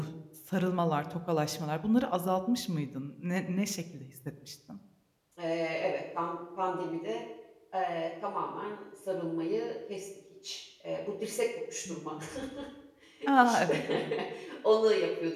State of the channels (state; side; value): identical; both; correlation 1.00